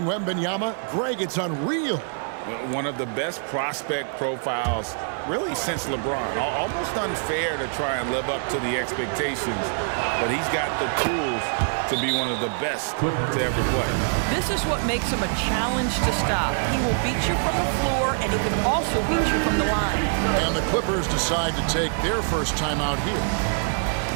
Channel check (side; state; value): left; silent; 62 dB below the other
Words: Wembanyama. Greg, it's unreal. One of the best prospect profiles really since LeBron. Almost unfair to try and live up to the expectations, but he's got the tools to be one of the best to ever play. This is what makes him a challenge to stop. He will beat you from the floor, and he can also beat you from the line. And the Clippers decide to take their first time out here.